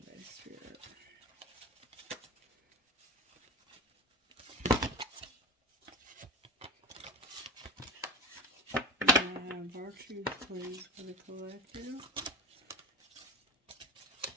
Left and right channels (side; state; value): both; normal; correlation 0.30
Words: Spirit? Virtues, please, for the collective.